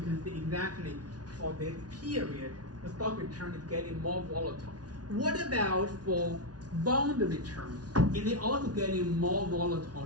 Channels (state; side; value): late; left; 0.69 ms